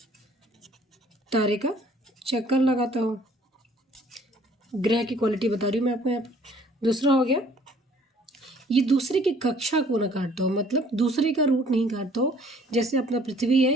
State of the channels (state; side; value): normal; both; correlation 0.57